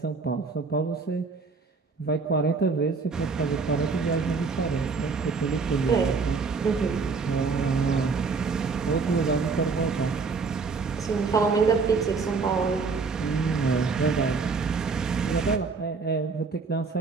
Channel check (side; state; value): left; quieter; 4.6 dB